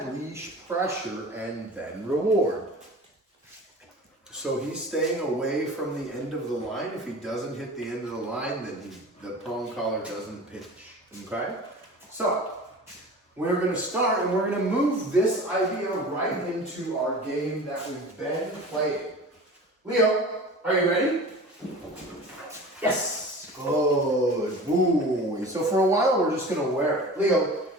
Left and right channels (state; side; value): normal; both; correlation 0.38